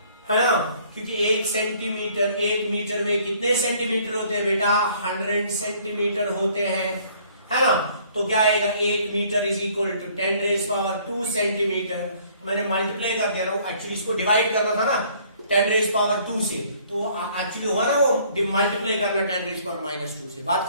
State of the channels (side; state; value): both; inverted; correlation -0.59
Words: ना। क्योंकि 1 सेंटीमीटर, 1 मीटर में कितने सेंटीमीटर होते हैं बेटा, 100 सेंटीमीटर होते हैं, है ना। तो क्या आएगा, 1 metre is equal to 10⁻2 centimetre. मैंने मल्टीप्लाई कर दिया ना, एक्चुअली इसको डिवाइड करना था ना 10⁻2 से, तो एक्चुअली हुआ ना वो मल्टीप्लाई करना 10⁻2 से। बात